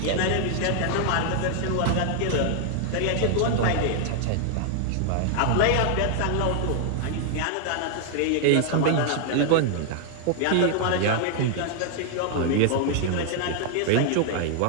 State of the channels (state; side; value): different; both; correlation 0.00